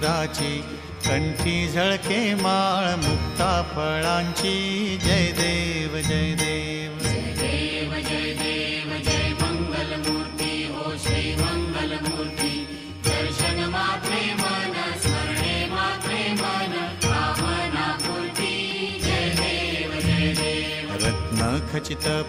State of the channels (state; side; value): identical; both; correlation 1.00